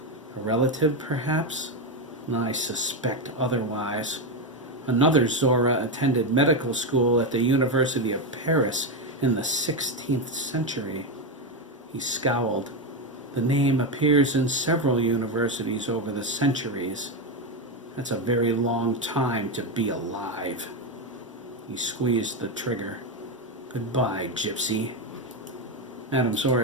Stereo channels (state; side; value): normal; both; correlation 0.10